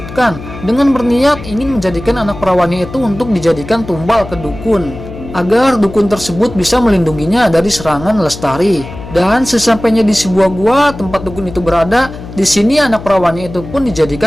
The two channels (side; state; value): left; noise; hum, 13 dB below the sound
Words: dengan berniat ingin menjadikan anak perawannya itu untuk dijadikan tumbal ke dukun, agar dukun tersebut bisa melindunginya dari serangan Lestari. Dan sesampainya di sebuah gua tempat dukun itu berada, di sini anak perawannya itu pun